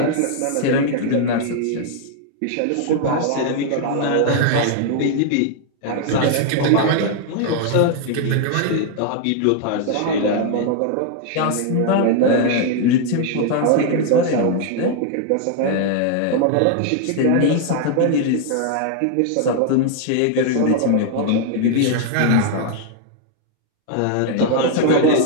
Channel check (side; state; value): both; different; correlation 0.00